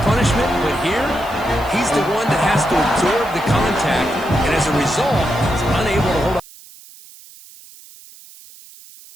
punishment, but here, he's the one that has to absorb the contact, and as a result, he's unable to hold on.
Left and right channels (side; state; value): right; noise; hiss, 21 dB below the sound